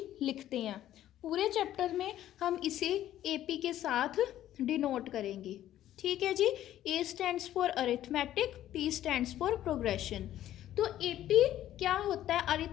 लिखते हैं। पूरे चैप्टर में हम इसे एपी के साथ डिनोट करेंगे। ठीक है जी। A stands for arithmetic, P stands for progression. तो एपी क्या होता है,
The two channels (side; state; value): right; quieter; 12.6 dB